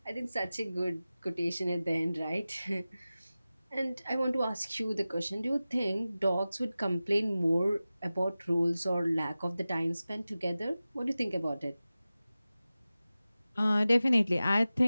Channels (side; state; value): both; inverted; correlation -0.96